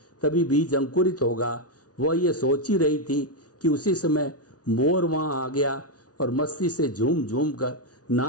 तभी बीज अंकुरित होगा। वह ये सोच ही रही थी कि उसी समय मोर वहाँ आ गया और मस्ती से झूम झूम कर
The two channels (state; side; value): late; right; 0.68 ms